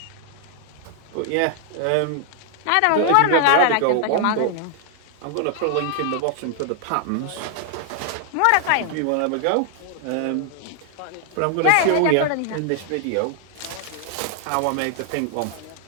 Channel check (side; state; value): both; different; correlation 0.00